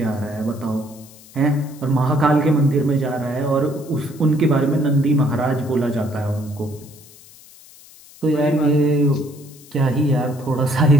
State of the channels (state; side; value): noise; left; hiss, 23 dB below the sound